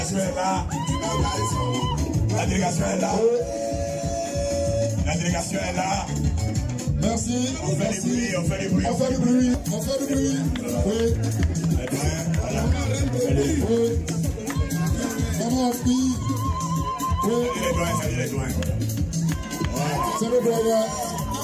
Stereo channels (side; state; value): both; identical; correlation 1.00